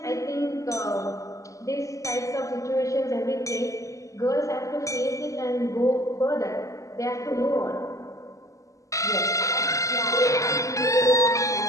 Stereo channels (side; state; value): right; late; 0.16 ms